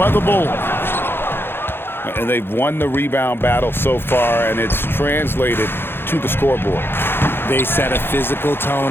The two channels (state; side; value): late; right; 0.11 ms